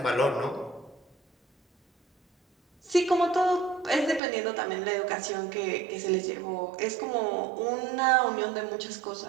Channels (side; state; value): left; drops out; at 4.2 s